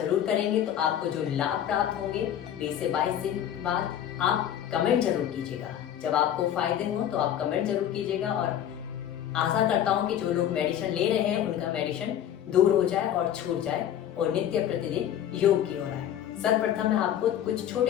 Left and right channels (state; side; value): quieter; right; 10.4 dB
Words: करेंगे तो आपको जो लाभ प्राप्त होंगे 20 से 22 दिन बाद आप कमेंट जरूर कीजिएगा। जब आपको फायदे हों तो आप कमेंट जरूर कीजिएगा। और आशा करता हूँ कि जो लोग मेडिसिन ले रहे हैं उनका मेडिसिन दूर हो जाए और छूट जाए और नित्य प्रतिदिन योग की ओर आए। सर्वप्रथम मैं आपको कुछ